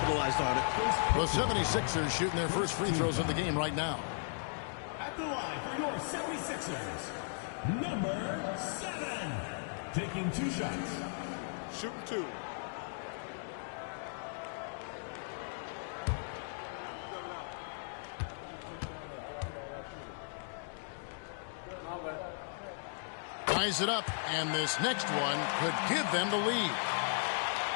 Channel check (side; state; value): right; silent; digital silence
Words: on it. The 76ers shooting their first free throws of the game right now. At the line for your 76ers, number 7, taking 2 shots. Shooting 2. Ties it up, and this next one could give them the lead.